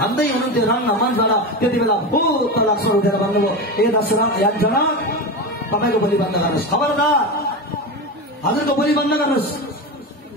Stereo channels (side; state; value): both; normal; correlation 0.20